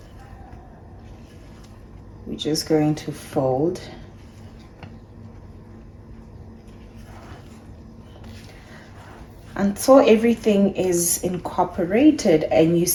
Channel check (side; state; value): both; identical; correlation 1.00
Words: We're just going to fold. Until everything is incorporated and you